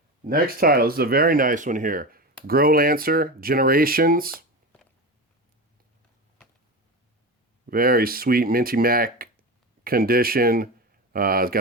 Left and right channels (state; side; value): normal; both; correlation 0.23